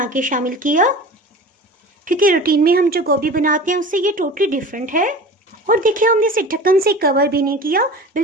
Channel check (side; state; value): both; normal; correlation 0.37